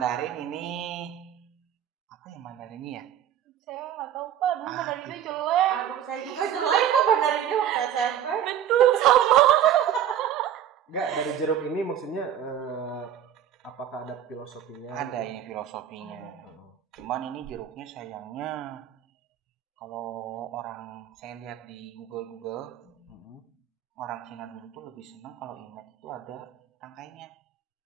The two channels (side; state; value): left; quieter; 10.1 dB